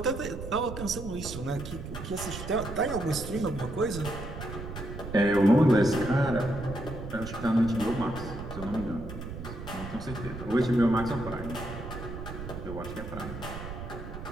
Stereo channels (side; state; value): right; noise; rumble, 9 dB below the sound